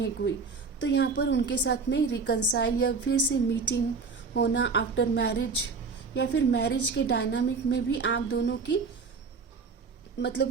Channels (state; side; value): quieter; left; 4.7 dB